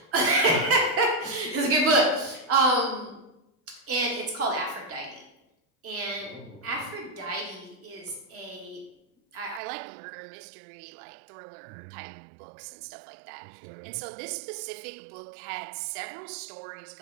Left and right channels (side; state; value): left; drops out; at 9.6 s